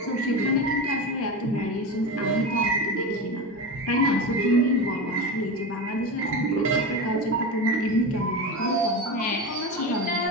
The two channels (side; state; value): both; normal; correlation 0.22